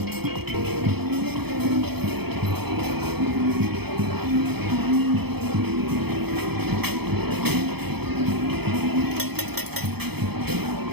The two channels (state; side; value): late; left; 0.97 ms